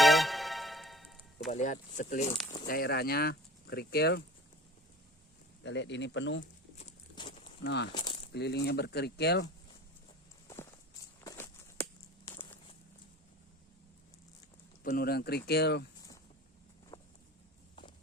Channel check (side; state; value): both; normal; correlation 0.41